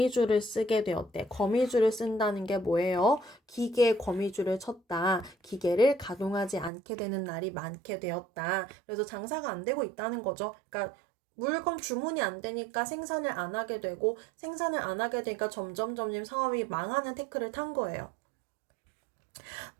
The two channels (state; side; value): drops out; left; at 6.7 s